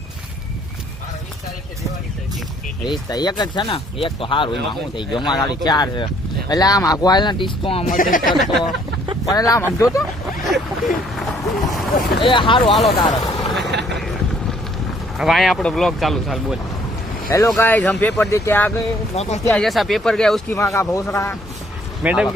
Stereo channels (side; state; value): both; normal; correlation 0.63